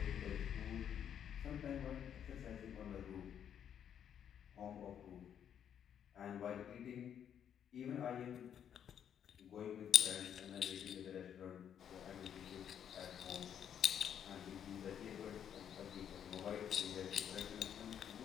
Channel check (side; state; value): right; quieter; 9.0 dB